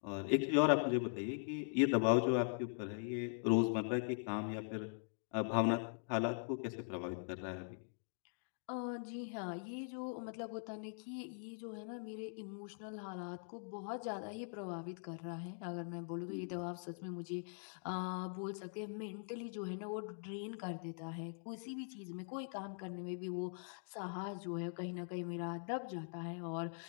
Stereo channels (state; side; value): silent; right; digital silence